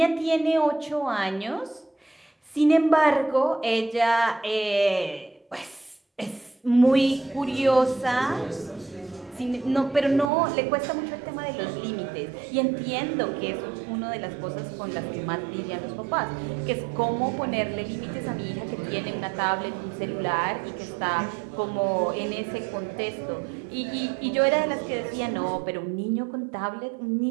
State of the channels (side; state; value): left; drops out; at 10.3 s